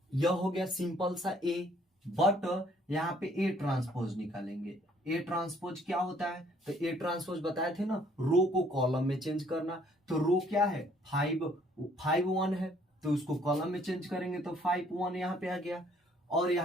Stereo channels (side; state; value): both; normal; correlation 0.62